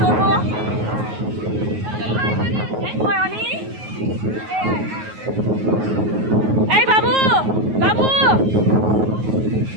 চড়বো। কই অনি? এই বাবু, বাবু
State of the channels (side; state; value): left; late; 9.4 ms